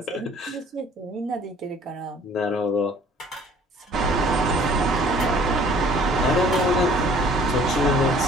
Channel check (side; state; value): both; normal; correlation 0.54